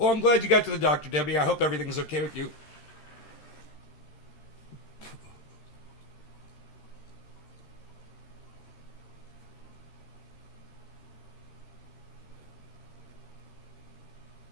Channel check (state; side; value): late; right; 13 ms